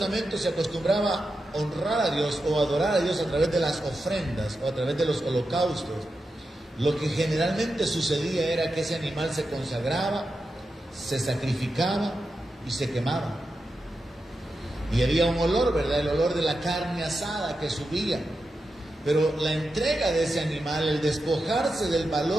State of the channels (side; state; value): both; normal; correlation 0.89